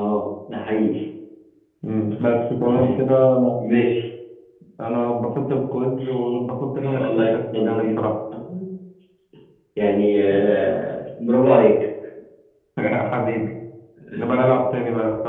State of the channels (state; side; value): identical; both; correlation 1.00